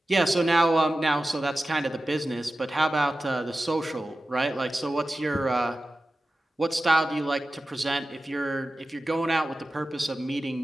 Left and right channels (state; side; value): normal; both; correlation 0.94